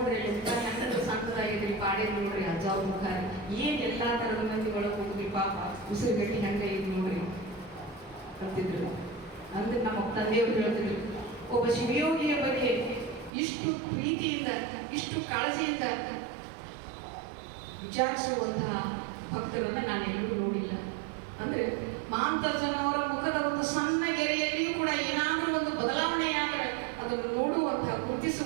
ಎಂತ ಹೆಂಗಂದ್ರೆ ಸಣ್ಣದಾಗಿದ್ರಿ ಪಾಡೆ ನೋಡ್ರಿ ಅಜ್ಜ ಅವ್ರ ಮುಖ ಏನ್ ಎಲ್ಲಾ ತರದ ಮಂದಿ ಒಳಗೆ ಹೋಗ್ರಿ ಪಾಪ ಉಸಿರುಗಟ್ಟಿ ಹೆಂಗ ಇದು ನೋಡ್ರಿ ಅಂತಿದ್ರು. ಅಂದ್ರೆ ನಮ್ಮ ತಂದೆಯವರು ಹೇಳ್ತಿದ್ರು, ಒಬ್ಬ ಶಿವಯೋಗಿಯ ಬಗ್ಗೆ ಇಷ್ಟು ಪ್ರೀತಿಯಿಂದ ಇಷ್ಟು ಕಾಳಜಿಯಿಂದ ವಿಚಾರಿಸುವಂತಹ ಭಕ್ತರನ್ನ ನಾನು ಎಲ್ಲೂ ನೋಡಿಲ್ಲ. ಅಂದ್ರೆ ಮಹಾಂತಜ್ಜನವರ ಮುಖದ ಒಂದು ಸಣ್ಣ ಗೆರೆಯಲ್ಲಿಯೂ ಕೂಡ ಏನಾದರೂ ಒಂದು ಬದಲಾವಣೆಯಾದರೆ ಅದನ್ನು ನೋಡುವಂತಹ,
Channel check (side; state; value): left; drops out; at 13.3 s